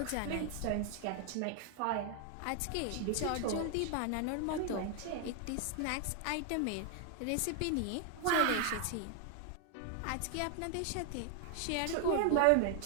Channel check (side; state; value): both; different; correlation 0.00